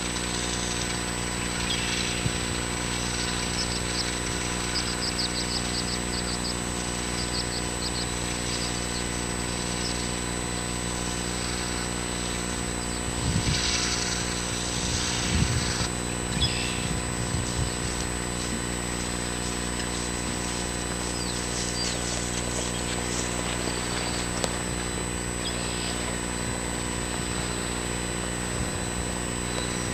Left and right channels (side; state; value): both; identical; correlation 1.00